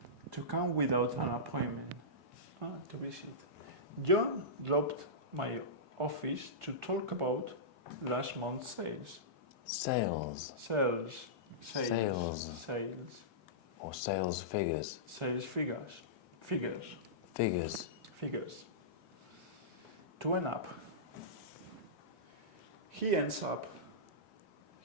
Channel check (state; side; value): normal; both; correlation -0.18